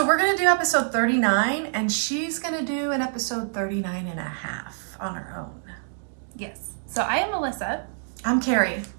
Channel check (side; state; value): left; silent; digital silence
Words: we're going to do episode 39 and she's going to do an episode 39 and a half on her own. Yes. So I am Melissa. I'm Carrie.